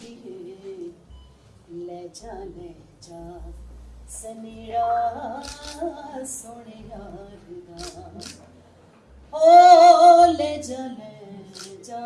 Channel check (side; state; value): both; identical; correlation 1.00